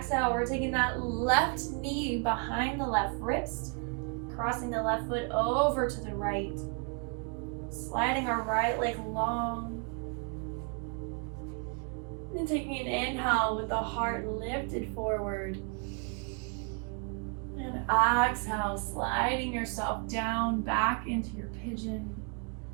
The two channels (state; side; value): quieter; left; 35.5 dB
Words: we're taking that left knee behind the left wrist, crossing the left foot over to the right, sliding our right leg long. And taking an inhale with the heart lifted forward. And exhale, sliding yourself down back into your pigeon.